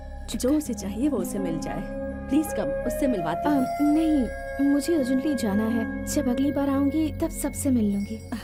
जो उसे चाहिए वो उसे मिल जाए। प्लीज कम, उससे मिलवाती हूँ। नहीं, मुझे अर्जेंटली जाना है। जब अगली बार आऊंगी तब सबसे मिल लूंगी।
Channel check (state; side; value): identical; both; correlation 1.00